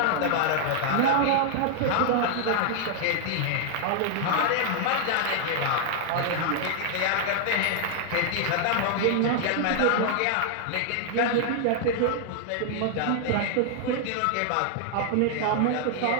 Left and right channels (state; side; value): different; both; correlation 0.00